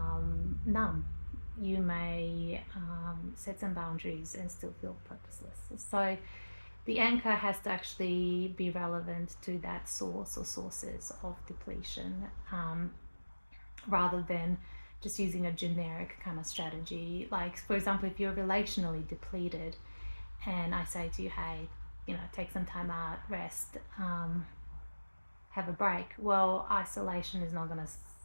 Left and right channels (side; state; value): both; inverted; correlation -1.00